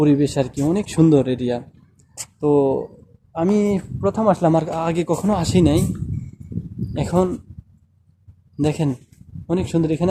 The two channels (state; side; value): identical; both; correlation 1.00